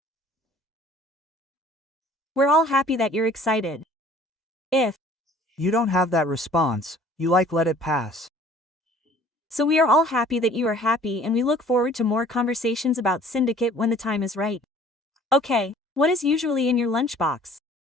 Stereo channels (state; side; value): normal; both; correlation 0.52